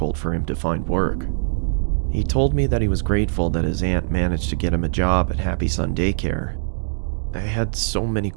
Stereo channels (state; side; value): silent; left; digital silence